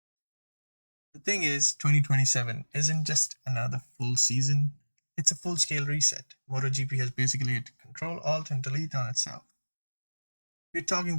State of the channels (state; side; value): inverted; both; correlation -1.00